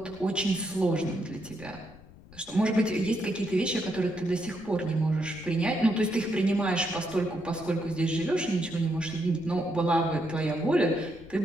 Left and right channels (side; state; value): left; noise; rumble, 21 dB below the sound